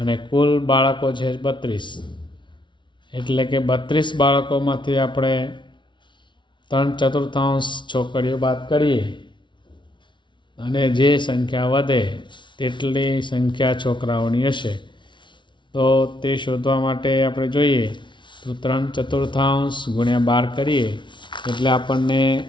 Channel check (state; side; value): late; right; 0.24 ms